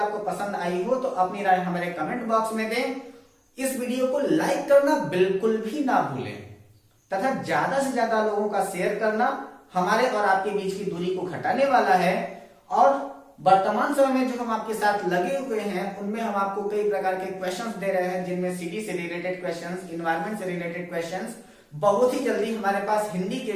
पसंद आई हो तो अपनी राय हमारे कमेंट बॉक्स में दें। इस वीडियो को लाइक करना बिल्कुल भी ना भूलें तथा ज्यादा से ज्यादा लोगों का शेयर करना हमारे और आपके बीच की दूरी को घटाने वाला है। और वर्तमान समय में जो हम आपके साथ लगे हुए हैं उनमें हम आपको कई प्रकार के क्वेश्चंस दे रहे हैं, जिनमें सिटी से रिलेटेड क्वेश्चंस, एनवायरनमेंट से रिलेटेड क्वेश्चंस बहुत ही जल्दी हमारे पास हिंदी के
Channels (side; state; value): both; identical; correlation 1.00